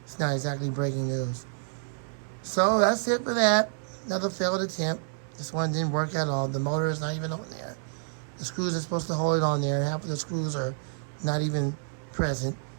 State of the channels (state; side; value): silent; left; 59 dB below the other